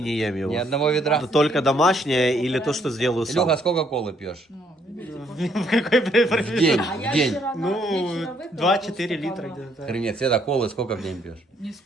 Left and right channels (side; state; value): both; normal; correlation 0.69